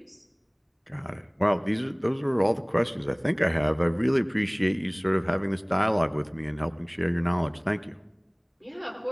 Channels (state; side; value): identical; both; correlation 1.00